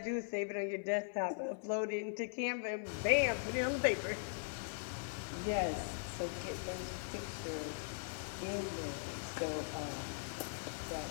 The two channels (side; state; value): right; silent; 51 dB below the other